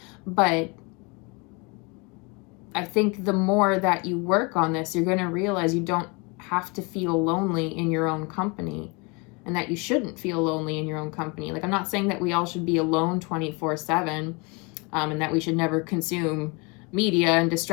but I think the more that you work on this, you're going to realize you don't have to feel lonely in your own company, and that you shouldn't feel lonely in your own company. Like, I'm not saying that we all should be alone 24/7, and that we should never consume media and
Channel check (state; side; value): quieter; right; 29.5 dB